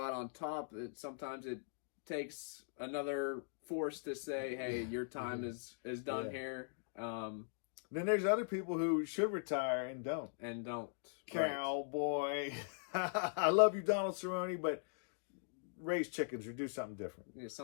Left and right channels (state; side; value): silent; right; digital silence